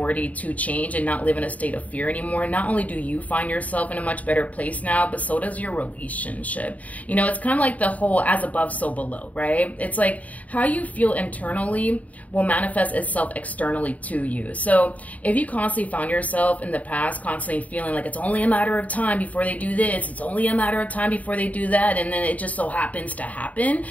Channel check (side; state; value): right; late; 0.071 ms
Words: to change and not live in a state of fear anymore, not only do you find yourself in a much better place now, but so does your relationship. You know, it's kind of like the whole as above, so below, right? It's like how you feel internally will manifest itself externally to you. So if you constantly found yourself in the past constantly feeling like it's only a matter of time before they do this, it's only a matter of time before they do that, and then it just so happens to happen,